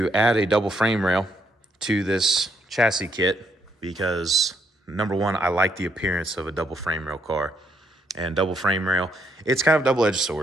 add a double frame rail to this chassis kit because, number one, I like the appearance of a double frame rail car. And double frame rail, it's kind of a double-edged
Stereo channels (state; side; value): normal; both; correlation 0.74